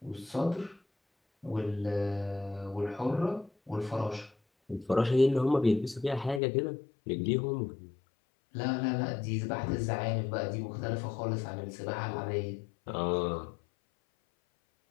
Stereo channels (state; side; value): drops out; right; at 6.4 s